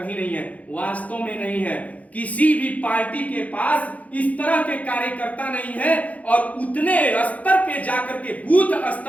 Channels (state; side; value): late; right; 0.070 ms